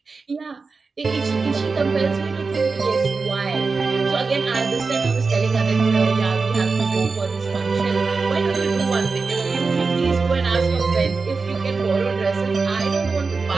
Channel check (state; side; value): quieter; left; 4.4 dB